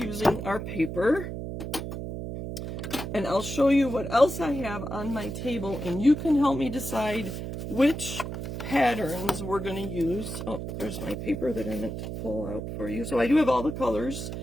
our paper. And I'll show you what else I have on my table, and you can help me decide which patterns we're going to use. Oh, there's my paper that I meant to pull out for you. So I do have all the colors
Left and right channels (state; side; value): noise; right; hum, 6 dB below the sound